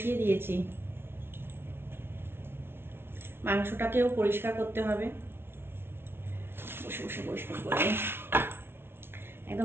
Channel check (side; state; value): left; late; 0.11 ms